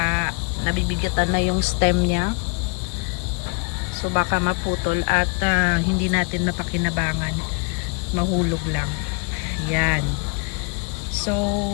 nabibigatan na yung stem niya. So, baka maputol at hindi natin mapakinabangan. Mahulog lang. Ayan. So,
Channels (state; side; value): quieter; right; 34.7 dB